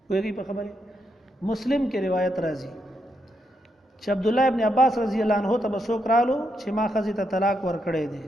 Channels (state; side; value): normal; both; correlation 0.80